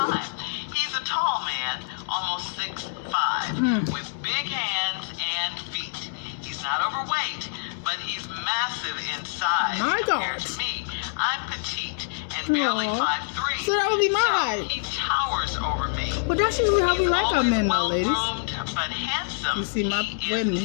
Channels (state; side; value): silent; right; digital silence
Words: He's a tall man, almost 6'5", with big hands and feet. He's not overweight, but he's massive in size My compared God. to me. I'm petite and barely Aw. 5'3". So that would be my So height. he towers over me. But that's usually how we like our men, though, ladies. Well-groomed but handsome. You see my He is wedding.